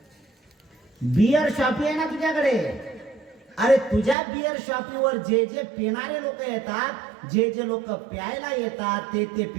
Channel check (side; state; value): left; drops out; at 4.2 s